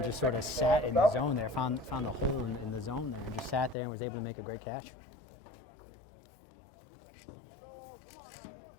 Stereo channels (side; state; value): right; drops out; at 3.8 s